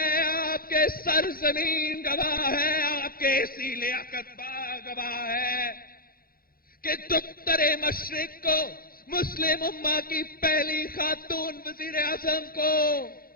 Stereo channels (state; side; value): late; right; 0.42 ms